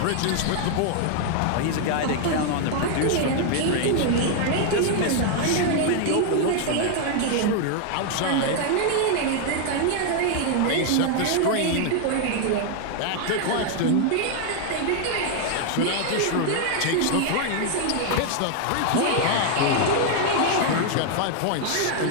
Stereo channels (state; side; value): different; both; correlation 0.00